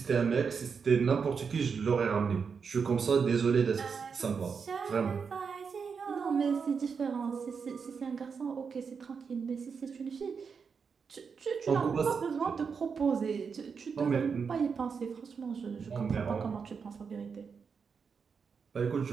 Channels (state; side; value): quieter; left; 5.9 dB